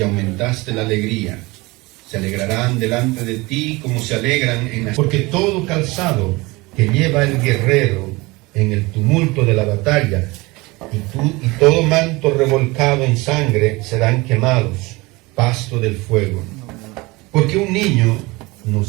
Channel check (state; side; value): quieter; left; 23.2 dB